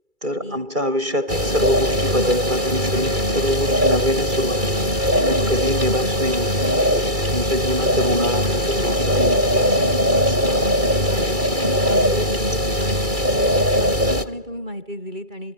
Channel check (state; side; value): late; left; 2.3 ms